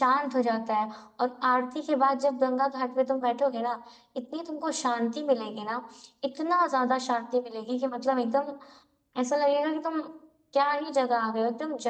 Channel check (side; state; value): both; identical; correlation 1.00